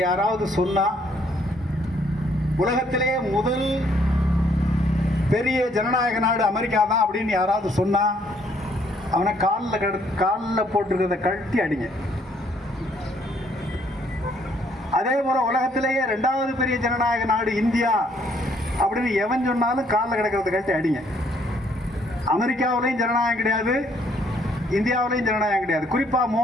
யாராவது சொன்னா, உலகத்திலேயே முதல் பெரிய ஜனநாயக நாடு அமெரிக்கா தான் அப்படின்னு யாராவது சொன்னா, அவனை காலில் போட்டிருக்கிறத கழட்டி அடிங்க. அதே போல உலகத்திலேயே 2வது பெரிய ஜனநாயக நாடு இந்தியா அப்படின்னு எவன் சொன்னாலும் காலில் கிடக்கிறத கழட்டி அடிங்க. அமெரிக்காவிலையும் ஜனநாயகம் கிடையாது, இந்தியாவிலையும் ஜனநாயகம் கிடையாது. குறிப்பா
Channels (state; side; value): normal; both; correlation 0.67